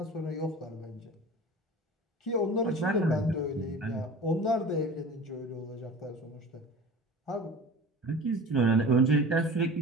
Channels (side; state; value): both; normal; correlation 0.38